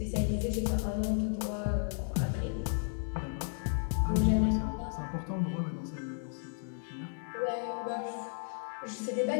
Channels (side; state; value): right; silent; digital silence